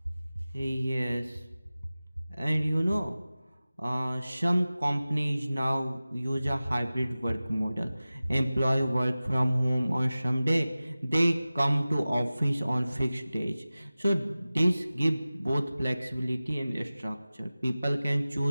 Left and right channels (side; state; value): both; inverted; correlation -0.97